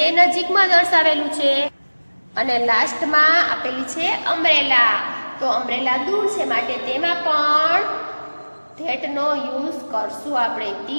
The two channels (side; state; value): both; inverted; correlation -1.00